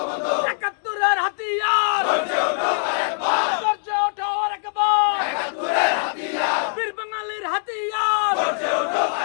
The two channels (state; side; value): silent; right; digital silence